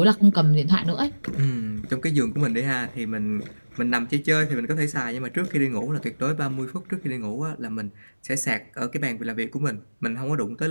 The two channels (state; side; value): inverted; both; correlation -1.00